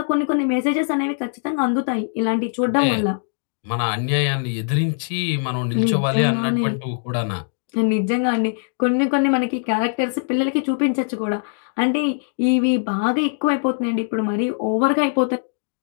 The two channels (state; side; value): silent; right; digital silence